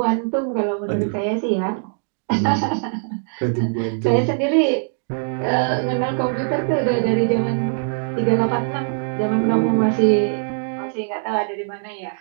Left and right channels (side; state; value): left; silent; digital silence